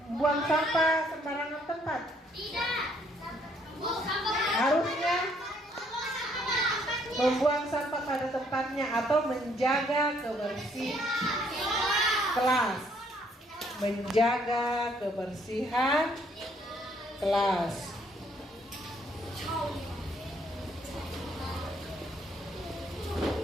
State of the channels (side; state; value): both; normal; correlation 0.67